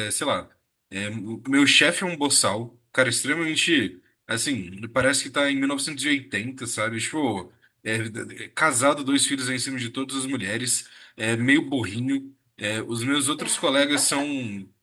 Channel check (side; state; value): both; identical; correlation 1.00